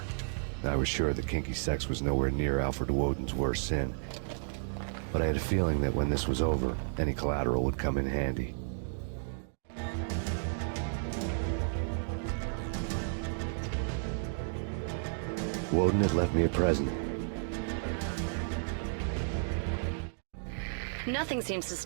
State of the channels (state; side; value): silent; left; digital silence